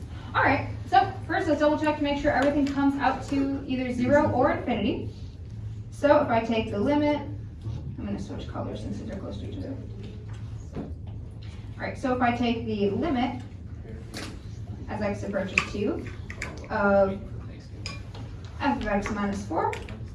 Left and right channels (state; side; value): identical; both; correlation 1.00